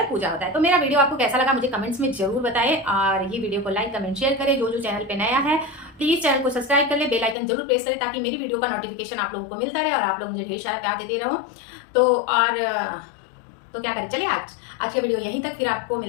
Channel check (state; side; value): drops out; right; at 7.4 s